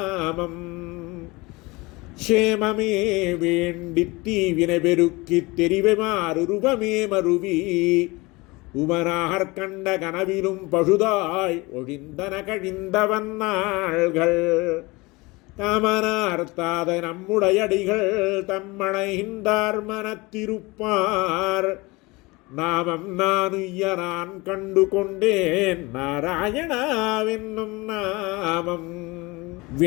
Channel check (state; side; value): quieter; right; 23.7 dB